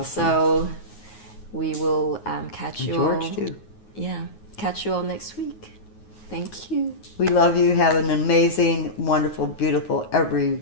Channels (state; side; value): late; right; 9.5 ms